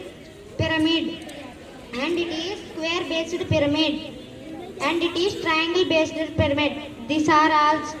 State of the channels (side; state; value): both; identical; correlation 1.00